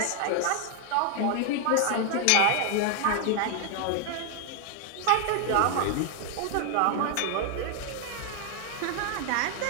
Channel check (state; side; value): different; both; correlation 0.00